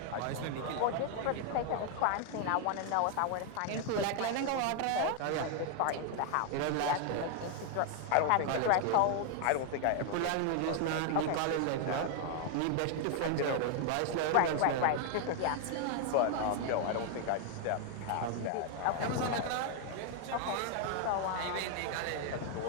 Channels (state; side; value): different; both; correlation 0.00